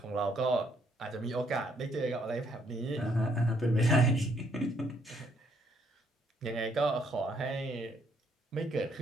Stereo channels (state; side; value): normal; both; correlation 0.69